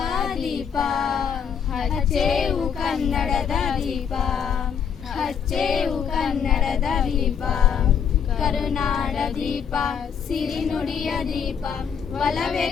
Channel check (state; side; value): quieter; right; 7.5 dB